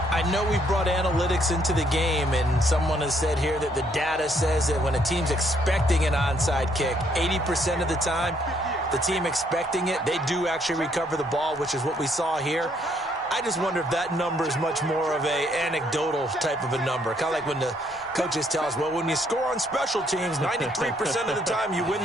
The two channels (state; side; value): normal; both; correlation 0.69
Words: I know we brought analytics into the game, and someone has said here that the data says that when a team's expecting an onside kick, 80% of the time, the team expecting it, they do actually recover the ball, which is what we saw here. I just wonder if that number is much more of a anecdotal type of a number. Kind of like when the coaches tell us, well, when you score on special teams, 93% of the time you